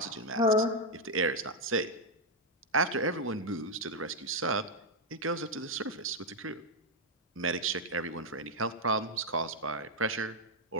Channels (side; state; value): both; normal; correlation 0.01